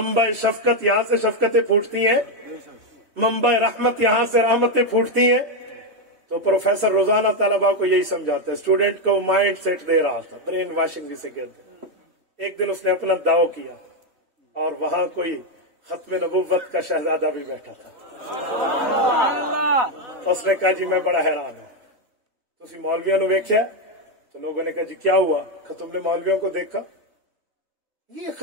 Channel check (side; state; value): left; late; 3.2 ms